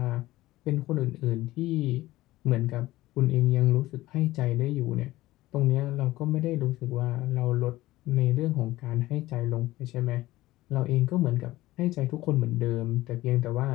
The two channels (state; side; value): quieter; right; 17.3 dB